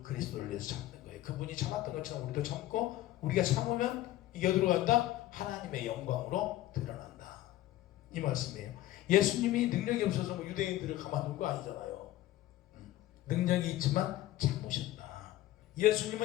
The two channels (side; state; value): right; quieter; 15.0 dB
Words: 그리스도를 위해서 참는 거예요. 그분이 참았던 것처럼 우리도 참고 우리가 참으면 이게 어디로 간다? 하나님의 영광으로 드러난다. 이 말씀이에요. 예수님이 능력이 없어서 뭐 유대인들을 가만둔 거 아니잖아요. 능력이 있지만 참으셨다.